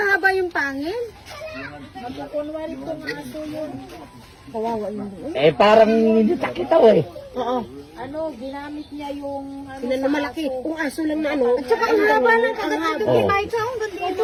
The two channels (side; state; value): both; identical; correlation 1.00